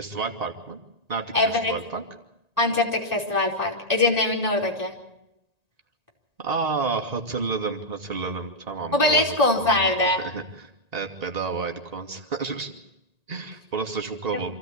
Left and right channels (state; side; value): late; left; 1.9 ms